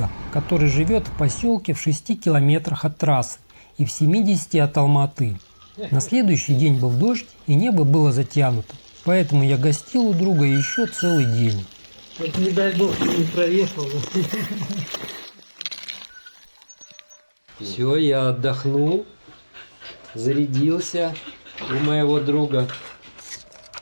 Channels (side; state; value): both; inverted; correlation -1.00